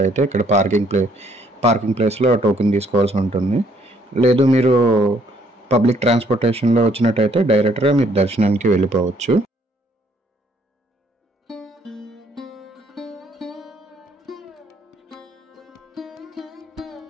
ఇక్కడ పార్కింగ్ ప్లేస్లో టోకెన్ తీసుకోవాల్సి ఉంటుంది. లేదు మీరు పబ్లిక్ ట్రాన్స్పోర్టేషన్లో వచ్చినట్టయితే డైరెక్ట్గా మీరు దర్శనానికి వెళ్ళిపోవచ్చు.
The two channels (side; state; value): both; normal; correlation 0.65